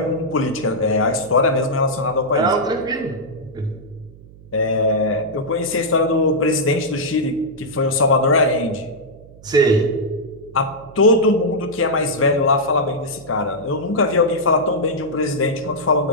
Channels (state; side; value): noise; right; hum, 22 dB below the sound